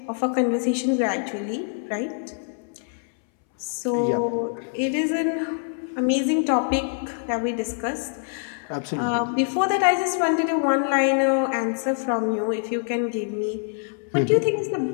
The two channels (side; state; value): right; silent; 62 dB below the other